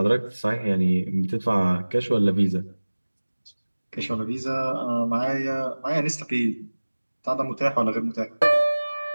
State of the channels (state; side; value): inverted; both; correlation -1.00